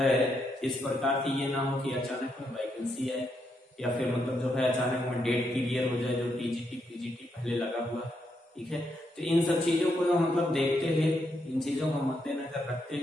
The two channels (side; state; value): both; normal; correlation 0.79